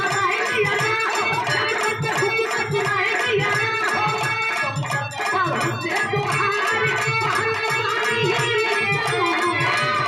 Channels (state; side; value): identical; both; correlation 1.00